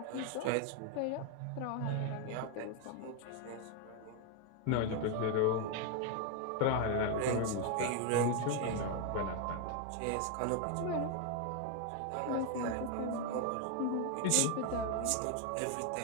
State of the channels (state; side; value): different; both; correlation 0.01